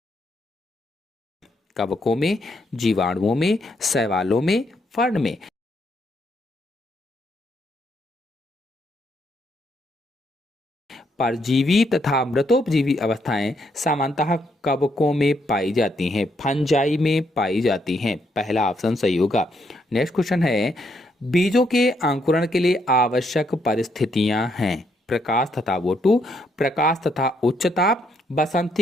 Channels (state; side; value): normal; both; correlation 0.75